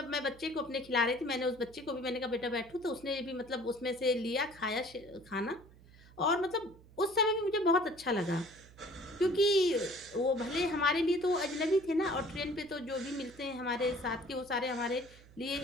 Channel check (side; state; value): right; noise; hum, 23 dB below the sound